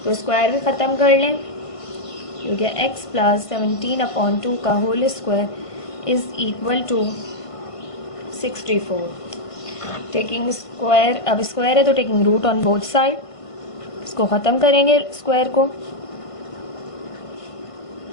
तो स्क्वायर भी ख़त्म कर लें, हो गया x प्लस 17/2 का whole square is equal to 64। Taking square, अब स्क्वायर है तो taking root on both side, इसको ख़त्म करेंगे स्क्वायर को।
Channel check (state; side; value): late; right; 1.5 ms